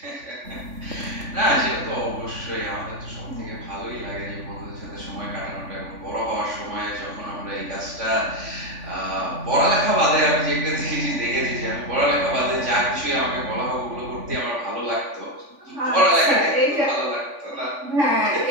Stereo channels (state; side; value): late; left; 3.5 ms